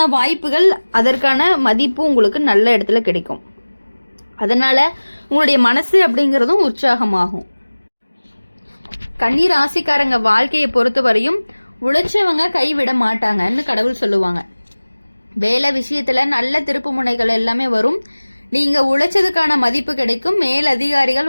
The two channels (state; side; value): inverted; both; correlation -1.00